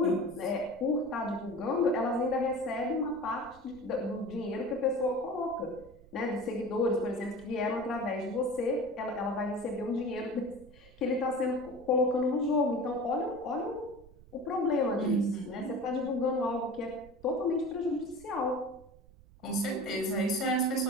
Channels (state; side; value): noise; right; rumble, 23 dB below the sound